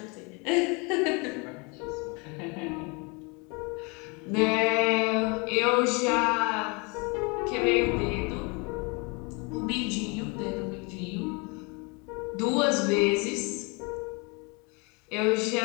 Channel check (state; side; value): quieter; right; 30.2 dB